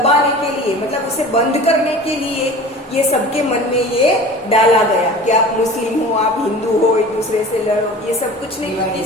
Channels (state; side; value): normal; both; correlation 0.39